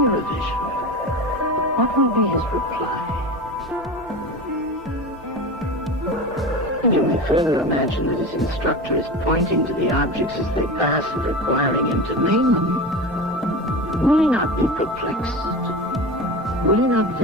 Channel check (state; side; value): normal; both; correlation 0.27